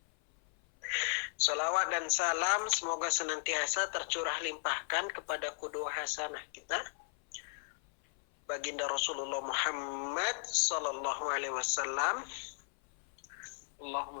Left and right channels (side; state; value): right; silent; 54 dB below the other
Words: Salawat dan salam semoga senantiasa tercurah limpahkan kepada qudwah hasanah kita, baginda Rasulullah Muhammad sallallahu alaihi wasallam.